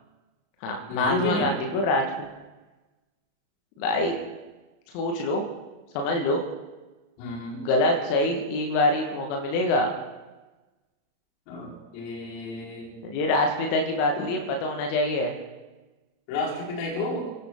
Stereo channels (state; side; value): late; right; 35 ms